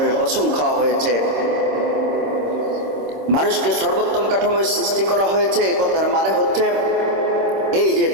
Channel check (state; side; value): late; left; 26 ms